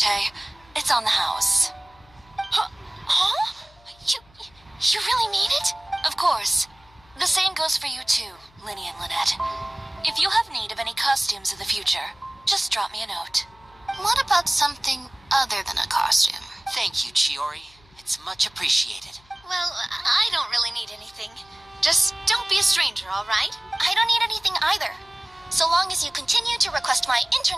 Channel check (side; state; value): left; noise; hum, 29 dB below the sound